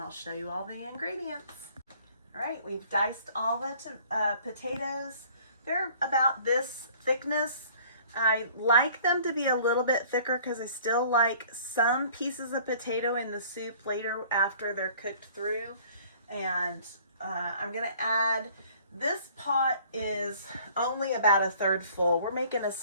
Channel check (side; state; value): both; inverted; correlation -0.53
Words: show you all the ingredients. All right, we've diced all the potatoes. They're about this thickness. I like them to be a little bit thicker because I still like some pieces of potato in the soup later after they're cooked through. And I'm going to add, this pot is only about a third full. We're making a